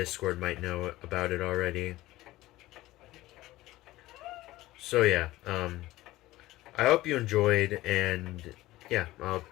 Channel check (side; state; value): right; quieter; 17.2 dB